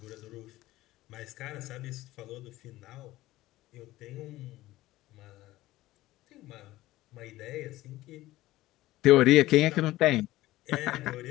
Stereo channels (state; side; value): quieter; right; 16.8 dB